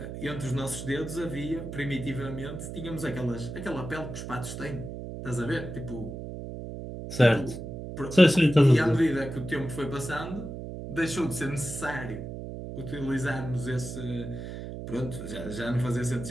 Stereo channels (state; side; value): noise; right; hum, 8 dB below the sound